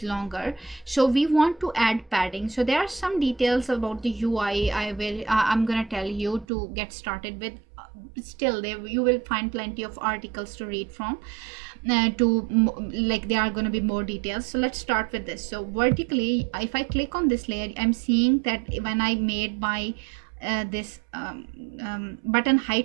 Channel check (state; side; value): drops out; left; at 6.5 s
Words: longer. So we want to add padding. So there are some details about the UI I'm gonna tell you to get started with. Still, there you will find plenty of articles to read from. There are going to be more details. So let's start with this. So vertically, if I click on this layer, I'm seeing that when I made my this button